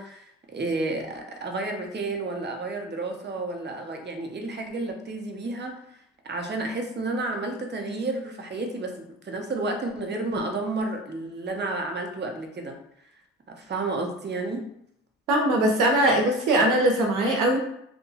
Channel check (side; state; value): both; normal; correlation 0.32